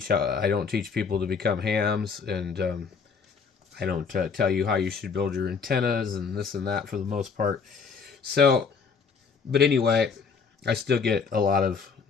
people to become hams, and I don't tell you how you should build your antennas and this and that for the most part. So, but anyway, I still get a lot of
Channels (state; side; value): quieter; right; 5.5 dB